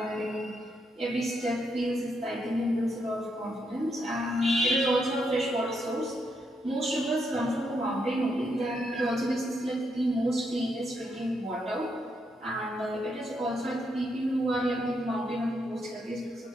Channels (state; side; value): normal; both; correlation 0.79